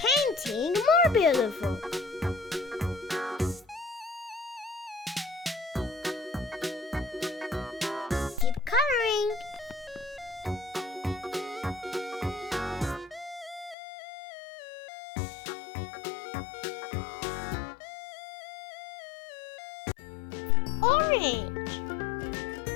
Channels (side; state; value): right; drops out; at 13.8 s